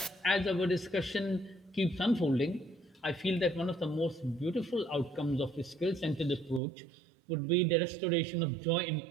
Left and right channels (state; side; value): drops out; left; at 6.6 s